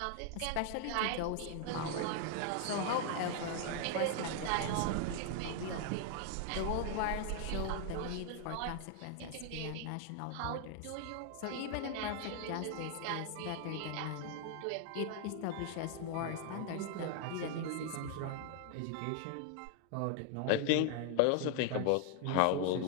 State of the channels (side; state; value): both; different; correlation 0.00